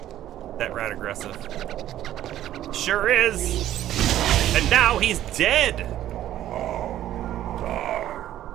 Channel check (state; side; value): quieter; left; 12.6 dB